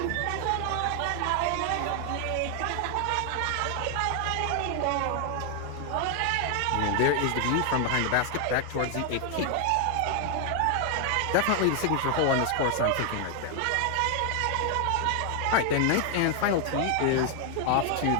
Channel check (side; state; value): both; different; correlation 0.00